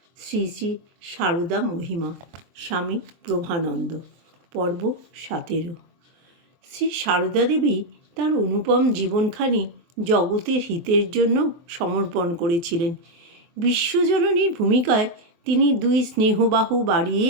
শ্রী শ্রী সারদা মহিমা, স্বামী প্রভানন্দ, পর্ব 17। শ্রী সারদা দেবী তার অনুপম জীবনখানি জগতের হিতের জন্য সমর্পণ করেছিলেন। বিশ্বজননীর ভূমিকায় তিনি দুই স্নেহবাহু বাড়িয়ে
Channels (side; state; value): left; late; 23 ms